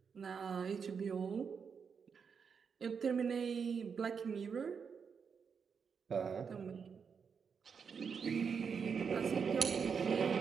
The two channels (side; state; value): left; quieter; 6.2 dB